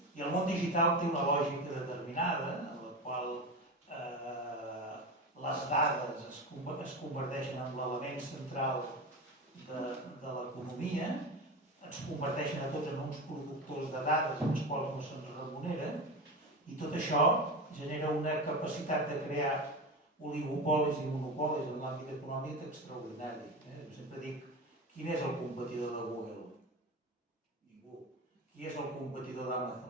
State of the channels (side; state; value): both; normal; correlation 0.24